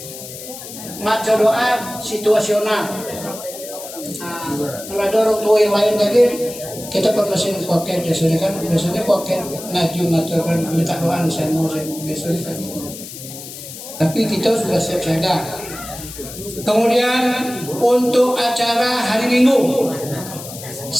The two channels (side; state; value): left; noise; hiss, 12 dB below the sound